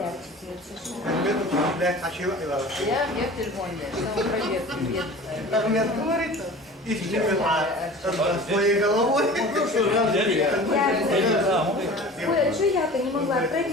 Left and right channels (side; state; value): both; normal; correlation 0.39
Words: телефоне, что он проверку. Ахмед говорит, ищите меня своей головой. Ой, а что я-то не могла?